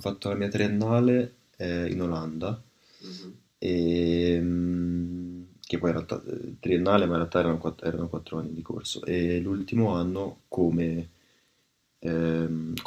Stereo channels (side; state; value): both; identical; correlation 1.00